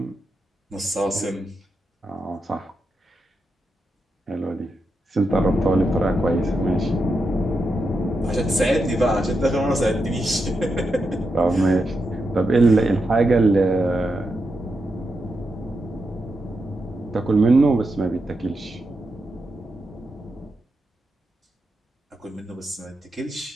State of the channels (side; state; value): both; normal; correlation 0.86